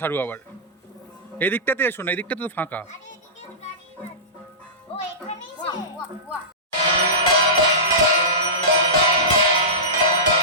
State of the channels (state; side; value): normal; both; correlation -0.19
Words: সারু আবার। এদিকটাতে এসো না, এদিকটাতে তো ফাঁকা।